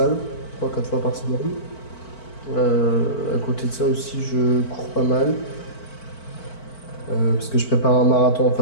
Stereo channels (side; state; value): right; late; 4.5 ms